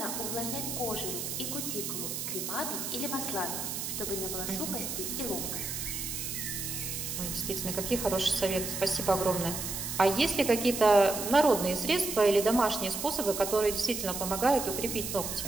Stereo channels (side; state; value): right; noise; hiss, 4 dB below the sound